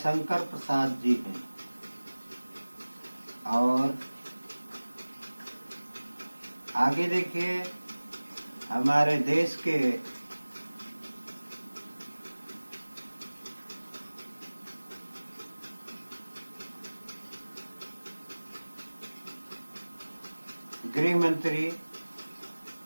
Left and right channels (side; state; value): both; inverted; correlation -1.00